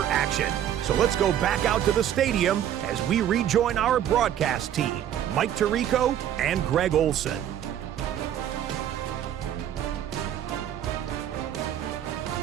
action. So let's go back out to the stadium as we rejoin our broadcast team, Mike Tirico and Greg Olson.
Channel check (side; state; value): left; quieter; 10.6 dB